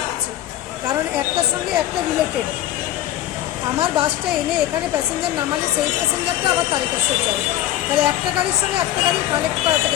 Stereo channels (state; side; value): quieter; right; 13.4 dB